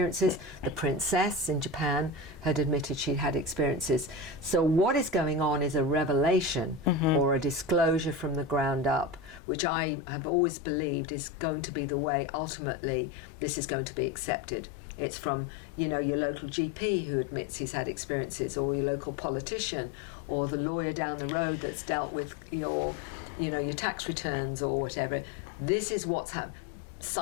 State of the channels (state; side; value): drops out; right; at 9.4 s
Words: The princess in Japan had admitted she'd had experiences. So what is going on is a revelation or a disclosure from the ground up, which I have always believed is going to be the way ultimately this is going to be accepted. It's from, you know, your local GP who admits he's had experiences, or your local politician, or the lawyer down the road that's dealt with your tax returns or whatever. This is what's happened.